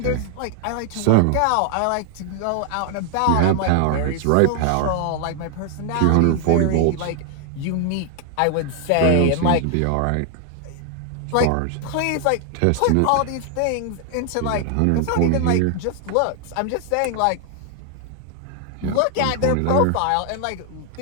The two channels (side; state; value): both; different; correlation 0.00